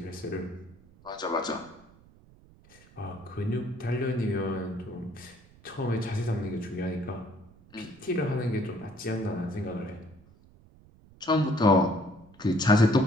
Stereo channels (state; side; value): noise; right; rumble, 25 dB below the sound